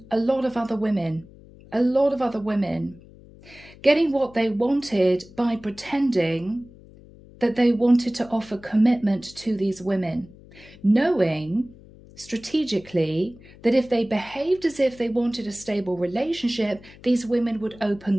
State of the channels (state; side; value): noise; left; hum, 22 dB below the sound